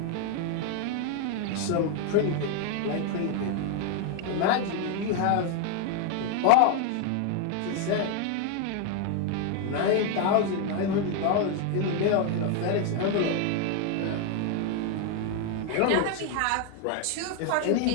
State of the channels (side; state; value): both; different; correlation 0.01